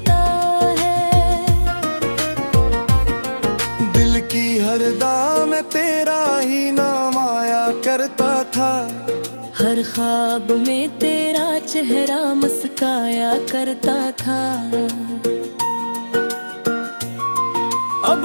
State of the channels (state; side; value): inverted; both; correlation -1.00